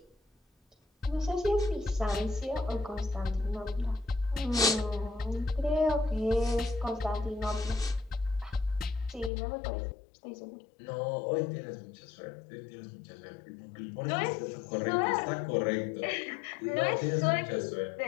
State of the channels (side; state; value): right; drops out; at 9.3 s